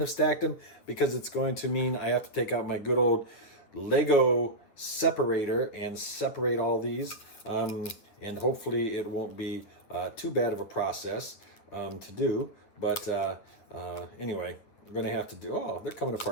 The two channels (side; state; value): right; late; 9.5 ms